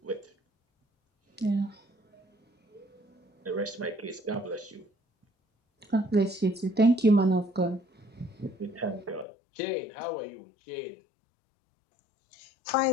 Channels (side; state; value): right; drops out; at 9.2 s